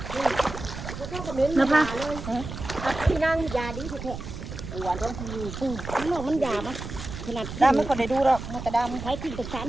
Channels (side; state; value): right; noise; rumble, 9 dB below the sound